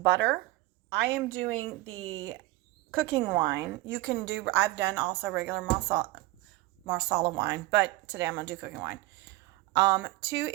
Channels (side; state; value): left; quieter; 18.8 dB